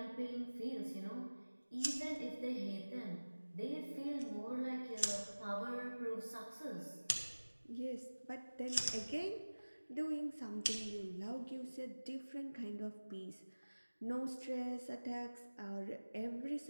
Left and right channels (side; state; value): both; inverted; correlation -1.00